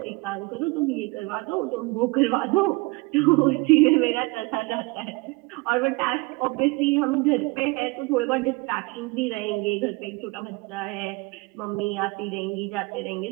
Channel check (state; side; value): quieter; left; 25.3 dB